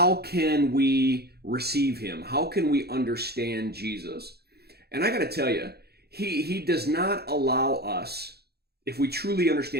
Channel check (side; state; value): left; late; 0.46 ms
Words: can we receive him? How can we understand Jesus? And I got to tell you, he does not allow us, if we truly